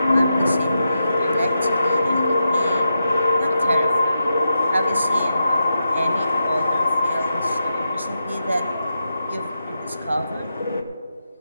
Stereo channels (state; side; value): inverted; both; correlation -0.87